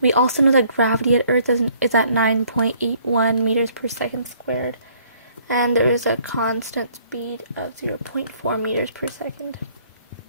also know that gravity at Earth is at 9.81 meters per second squared, and there is a constant speed of 0.4 meters per second.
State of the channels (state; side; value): inverted; both; correlation -0.61